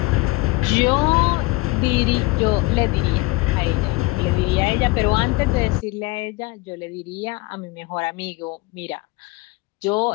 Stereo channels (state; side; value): quieter; right; 22.2 dB